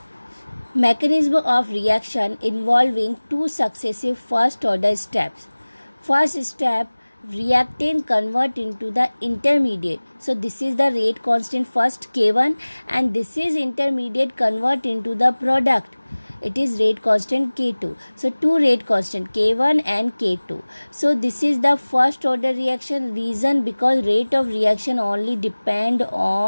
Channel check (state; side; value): inverted; both; correlation -1.00